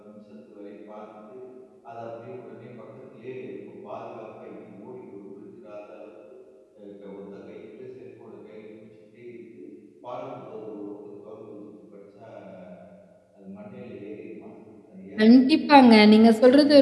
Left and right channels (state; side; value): identical; both; correlation 1.00